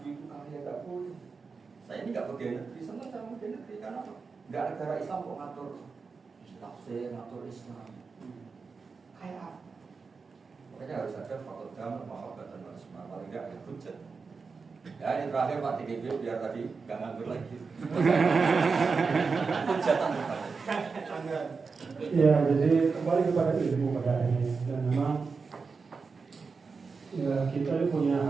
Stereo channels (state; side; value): quieter; left; 4.8 dB